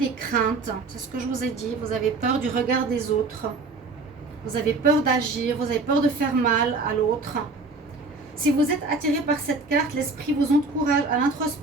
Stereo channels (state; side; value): quieter; left; 3.7 dB